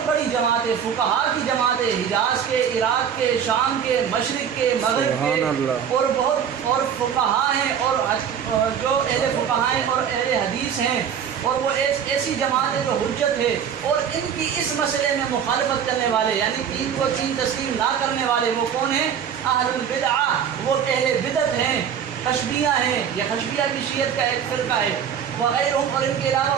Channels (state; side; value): quieter; left; 8.1 dB